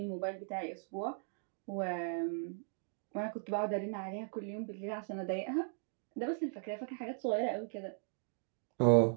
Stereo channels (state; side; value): silent; left; digital silence